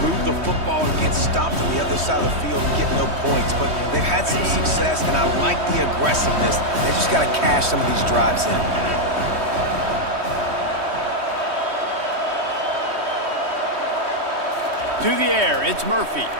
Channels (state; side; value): late; left; 3.1 ms